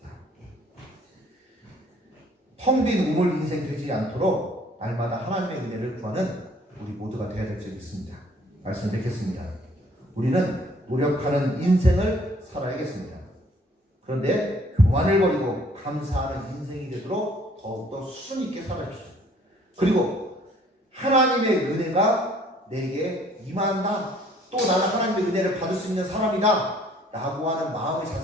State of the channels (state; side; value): normal; both; correlation 0.59